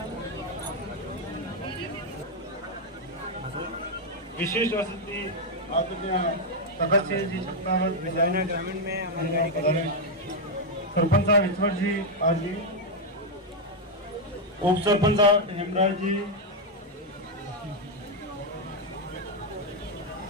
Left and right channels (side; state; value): both; normal; correlation 0.01